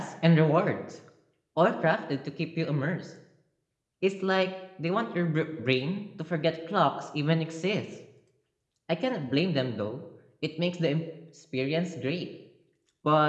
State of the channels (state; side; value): identical; both; correlation 1.00